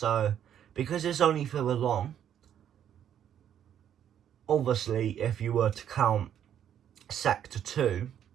because it's only further along, obviously, if you were to count Sector 2,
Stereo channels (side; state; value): left; quieter; 9.7 dB